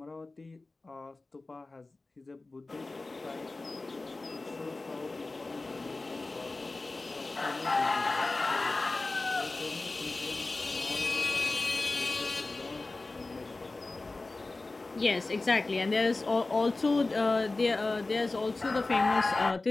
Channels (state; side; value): quieter; right; 3.3 dB